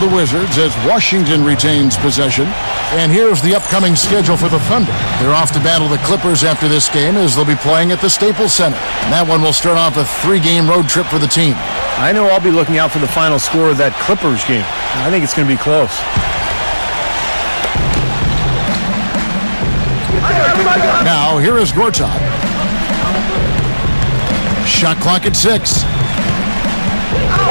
the Wizards as Washington retains possession. And here's the upcoming schedule for the Thunder. They're off to battle the Clippers after this game as they'll be playing at the Staples Center. And that one will start off a 3-game road trip for the team. I know I'll be looking out for the final score of that Clippers game. I think it's going to be close. Now, here is Gortat. Shot clock at 6.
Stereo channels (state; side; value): inverted; both; correlation -1.00